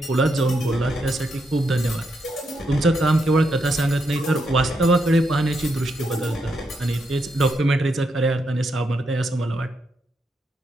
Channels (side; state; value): both; normal; correlation 0.81